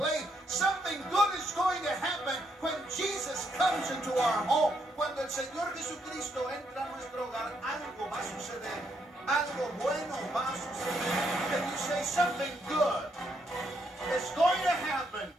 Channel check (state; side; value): normal; both; correlation 0.76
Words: Something good is going to happen when Jesus comes into our home. Cuando el Señor Jesucristo entra a nuestro hogar, algo va a suceder. Algo bueno va a suceder. Can you say something good is going to happen